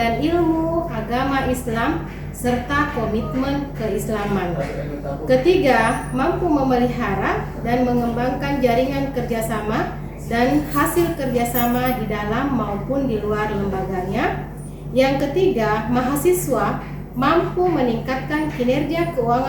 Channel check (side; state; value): both; identical; correlation 1.00